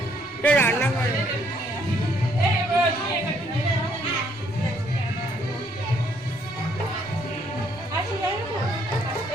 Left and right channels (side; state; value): both; normal; correlation 0.68